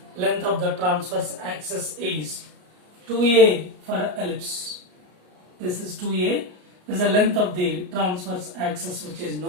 of the transverse axis is 2a for ellipse. This is 2a. This is the length of the transverse axis, which is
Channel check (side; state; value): left; late; 33 ms